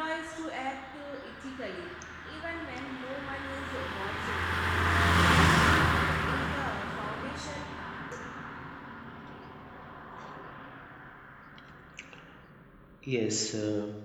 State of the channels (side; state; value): both; identical; correlation 1.00